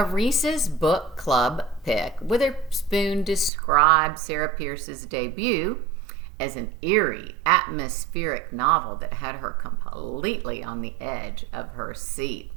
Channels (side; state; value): left; drops out; at 3.5 s